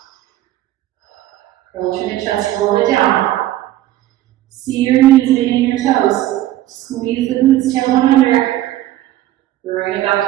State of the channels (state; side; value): quieter; left; 14.2 dB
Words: Curl to the chest, roll it down. See your knees meeting your toes. Squeeze the glutes, tailbone under. Bring it back